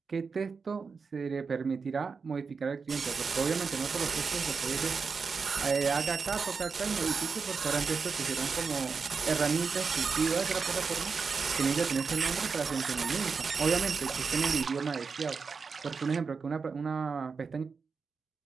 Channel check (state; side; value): quieter; left; 5.1 dB